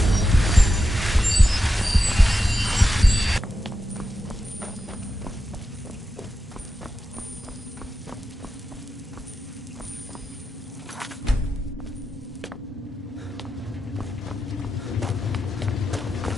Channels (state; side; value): normal; both; correlation 0.89